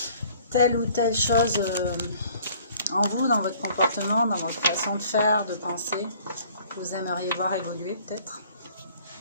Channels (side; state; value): both; inverted; correlation -0.55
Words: telle ou telle chose en vous, dans votre comportement, dans votre façon de faire, de penser, que vous aimeriez voir évoluer peut-être.